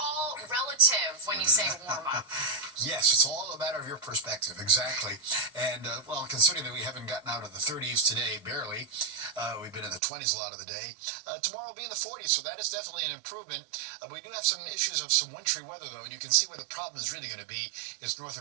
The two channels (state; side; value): drops out; left; at 10.0 s